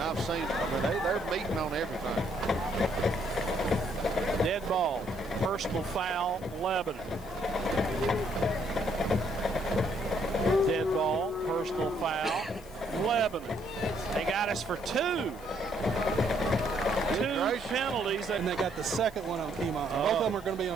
I've seen. I mean, they're meeting on everything. Dead ball, personal foul, Lebanon. Dead ball, personal foul, Lebanon. They got us for 2. 2 penalties. And they got the second one on Keymon. Both of them are going to be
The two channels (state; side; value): noise; left; hiss, 23 dB below the sound